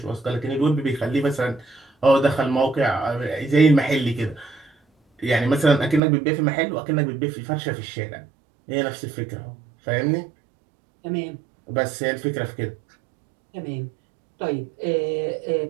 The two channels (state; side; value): drops out; left; at 6.0 s